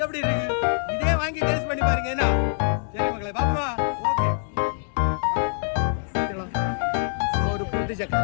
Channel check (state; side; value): silent; right; digital silence